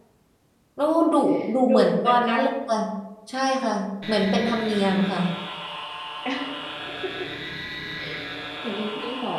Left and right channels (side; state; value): both; identical; correlation 1.00